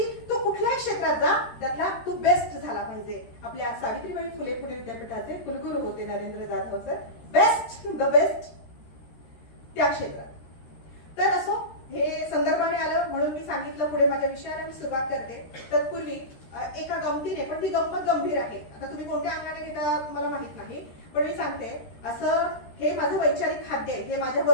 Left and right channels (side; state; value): right; late; 13 ms